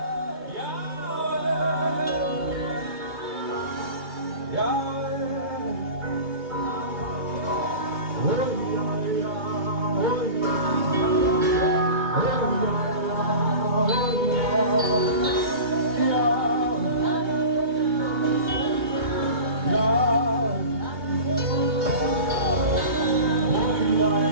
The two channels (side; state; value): left; late; 2.8 ms